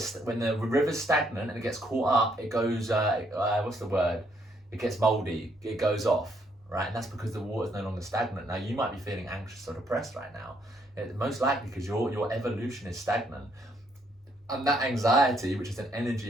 river's stagnant and it gets caught up, it goes it gets moldy, it goes off, right? And that's because the water's no longer stagnant. Now you might be feeling anxious or depressed right now. It's most likely because your evolution is stagnant. And that anxiety, which is an energy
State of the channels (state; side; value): normal; both; correlation 0.71